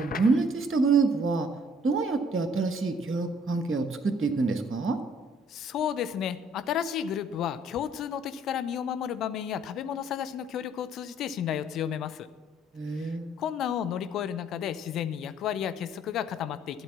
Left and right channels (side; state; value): both; normal; correlation 0.60